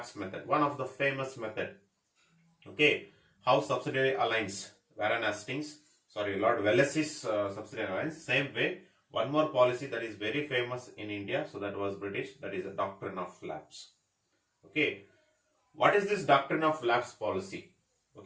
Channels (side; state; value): both; identical; correlation 1.00